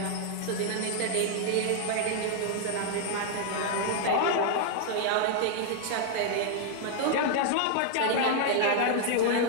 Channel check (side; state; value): both; different; correlation 0.00